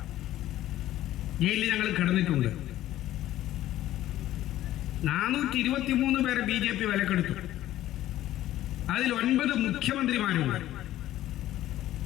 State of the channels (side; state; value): right; quieter; 13.9 dB